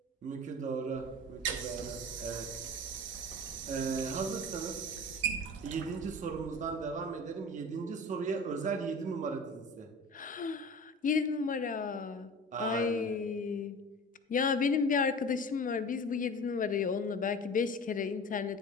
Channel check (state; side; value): normal; both; correlation 0.37